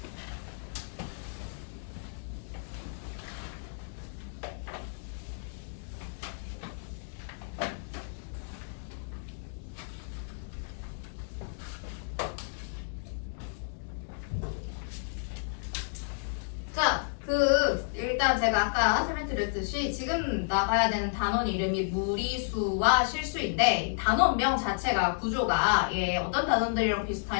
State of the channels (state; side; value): silent; right; digital silence